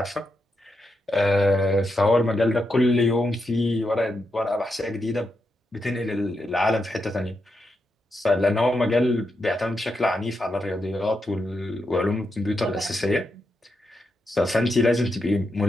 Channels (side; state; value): both; normal; correlation 0.84